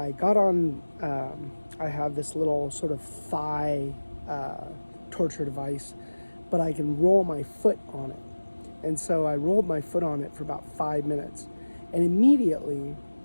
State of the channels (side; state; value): both; inverted; correlation -1.00